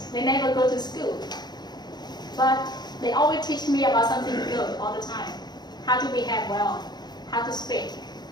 they never go to school, but they always teach me about something good all the time. How to behave well, how to speak.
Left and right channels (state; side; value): late; right; 0.20 ms